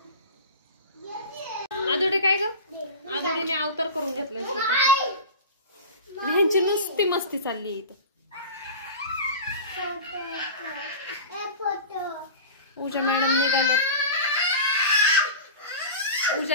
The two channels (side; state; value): both; inverted; correlation -0.32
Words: आदोडे काय ग? आदोडीने अवतार करून घेतलाय. ह्यांची नुसती मस्ती चालली इथं. पूजा मॅडम निघाले.